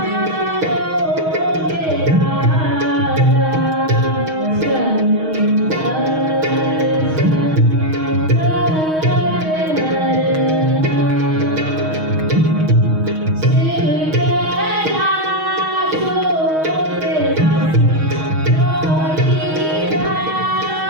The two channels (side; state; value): left; late; 6.4 ms